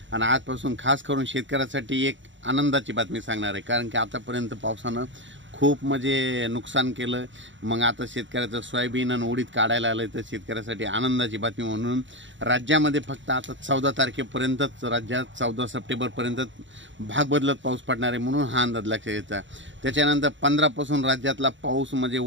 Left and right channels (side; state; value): left; late; 0.54 ms